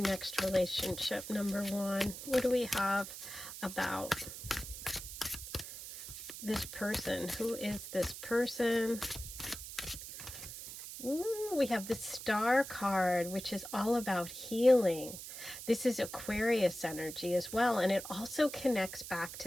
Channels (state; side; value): noise; right; hiss, 10 dB below the sound